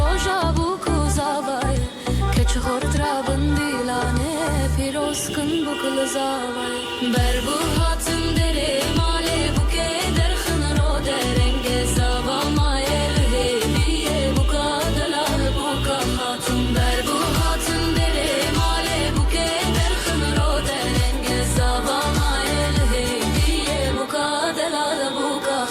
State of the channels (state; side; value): identical; both; correlation 1.00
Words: بوکو زاوایه که چخورت را بندیلانه پیروز کن بکل زاوایه بربو هاتم دره ماله بوکه درخن رو درنگ زاوا مایل هیویه بوکا دلال بوکا خاتون بربو هاتم دره ماله بوکه درخن رو درنگ زاوا مایل هیویه بوکا دلال بوکا